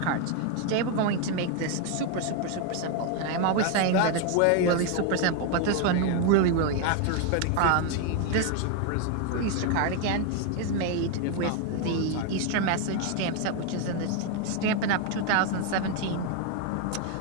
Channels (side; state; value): both; different; correlation 0.01